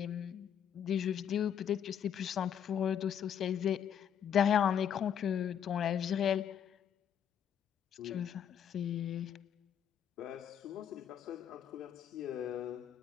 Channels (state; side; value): quieter; right; 8.8 dB